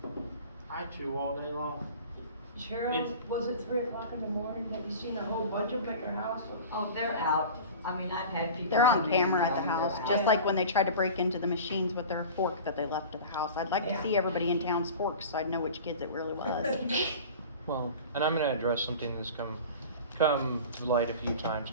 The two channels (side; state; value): both; inverted; correlation -0.37